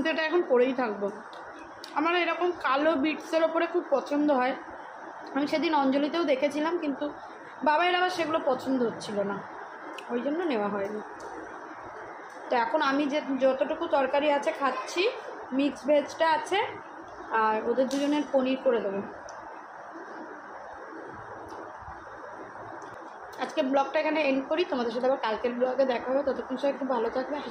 এটা এখন পরেই থাকবো। আমার এরকম কালো বিটসের ওপরে খুব পছন্দ হয়। আমি সেদিন অঞ্জলিতেও দেখেছিলাম, কিন্তু বাবার আবার সেগুলো পছন্দ হচ্ছিল না, ওই জন্য নেওয়া হয়নি। তো এখন আমি যে যতটুকু তরকারি আছে খাচ্ছি, মিক্স ভেজটা আছে, আর ওদের দুজনের পনির করে দেবো। আজকে ব্লগটা এখানে এন্ড করি, তোমাদের সাথে আবার কালকের ব্লগে দেখা হবে। ততক্ষণ সবাই একটু ভালো থাকবে,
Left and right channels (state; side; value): identical; both; correlation 1.00